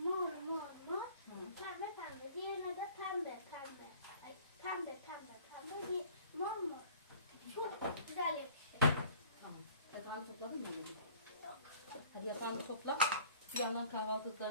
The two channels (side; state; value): both; inverted; correlation -0.50